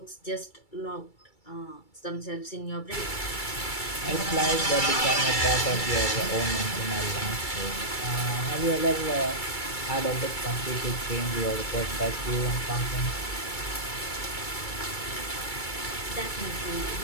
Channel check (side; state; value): right; late; 2.3 ms